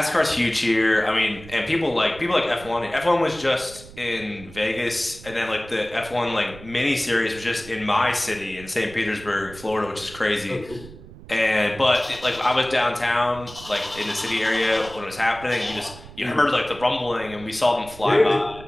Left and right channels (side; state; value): right; noise; rumble, 18 dB below the sound